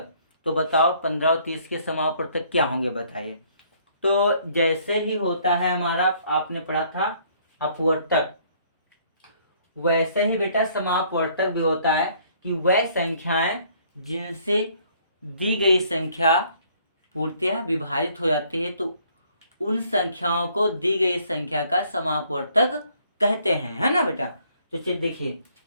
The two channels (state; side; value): inverted; both; correlation -0.63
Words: तो बताओ 15 और 30 के समापवर्तक क्या होंगे बताइए। तो जैसे ही होता है हमारा, आपने पढ़ा था अपवर्तक, वैसे ही बेटा समापवर्तक भी होता है कि वह संख्याएं जिनसे दी गई संख्या पूर्णतः विभाजित हो जाती है तो उन संख्याओं को दी गई संख्या का समापवर्तक कहते हैं, है ना बेटा। तो चलिए देखिए,